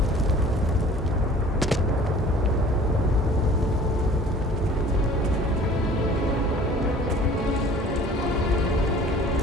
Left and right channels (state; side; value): normal; both; correlation 0.49